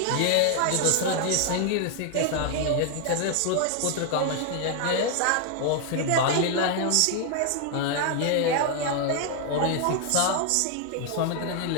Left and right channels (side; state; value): both; different; correlation 0.00